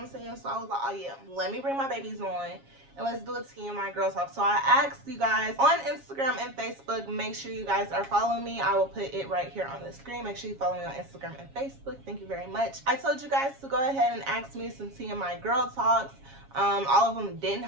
saying? So I was like, oh yeah, let me bring my babies on and let's do a TMI girl talk. So I asked you guys on Instagram and Facebook, make sure you guys are following me. I will put it right here on the screen. Make sure you follow me on Instagram and Facebook. Thank you very much. I told you guys to go ahead and ask me some TMI girl talks. All of them didn't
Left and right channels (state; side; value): late; left; 7.3 ms